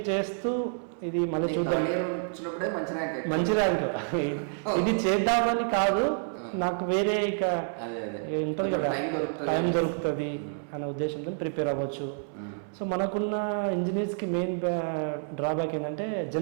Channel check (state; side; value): silent; left; 58 dB below the other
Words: చేస్తూ ఇది మళ్ళీ వచ్చినప్పుడే మంచి ర్యాంక్. ఇది చేద్దామని కాదు, నాకు వేరే ఇక టైం దొరుకుతుంది అనే ఉద్దేశంతో ప్రిపేర్ అవ్వచ్చు. సో మనకున్న ఇంజనీర్స్ కి మెయిన్ డ్రాబ్యాక్ ఏంటంటే